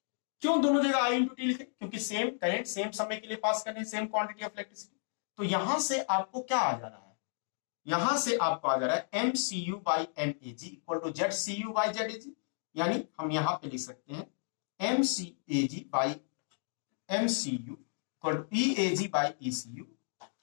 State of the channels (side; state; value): right; silent; digital silence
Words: क्यों दोनों जगह आई into T लिखे? क्योंकि same current same समय के लिए पास करने, same quantity of electricity. तो यहां से आपको क्या आ जा रहा है? यहां से आपको आ जा रहा है MCU by MAG equal to ZCU by ZAG। यानी हम यहां पे लिख सकते हैं MCAG by MCU equal to EAG by ECU